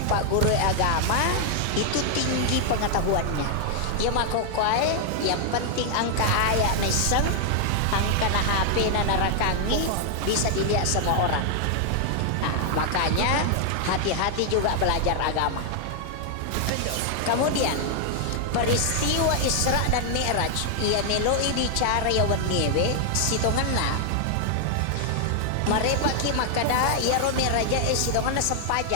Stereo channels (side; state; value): both; different; correlation 0.00